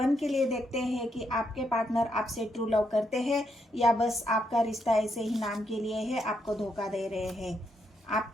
के लिए देखते हैं कि आपके पार्टनर आपसे ट्रू लव करते हैं या बस आपका रिश्ता ऐसे ही नाम के लिए है, आपको धोखा दे रहे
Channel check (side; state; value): both; normal; correlation 0.78